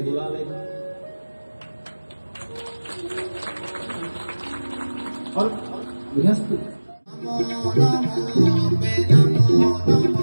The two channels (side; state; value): both; inverted; correlation -1.00